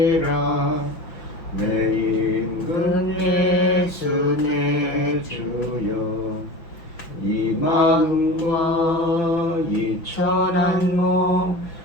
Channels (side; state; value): right; late; 5.9 ms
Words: 내 임금 예수 내 주여 이 마음과 이 천한 몸